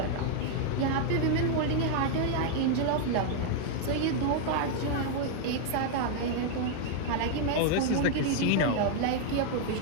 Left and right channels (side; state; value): both; different; correlation 0.00